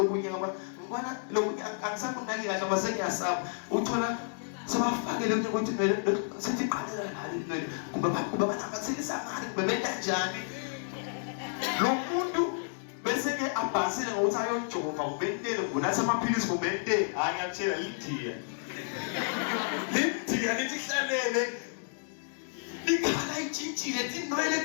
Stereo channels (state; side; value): silent; right; digital silence